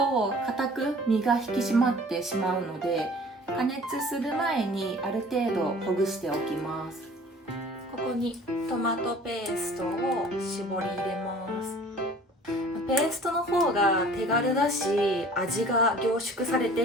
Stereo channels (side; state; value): both; normal; correlation 0.48